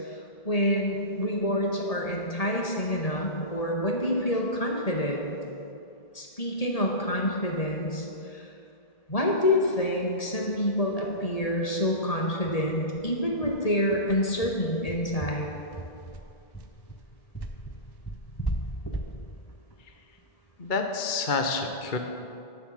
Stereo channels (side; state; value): right; late; 1.8 ms